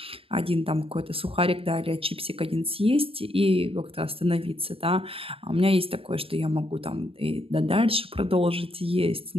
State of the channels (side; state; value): left; late; 0.27 ms